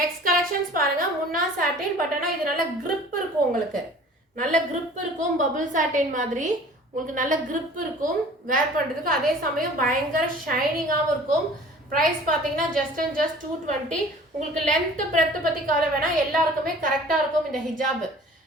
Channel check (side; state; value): both; normal; correlation 0.47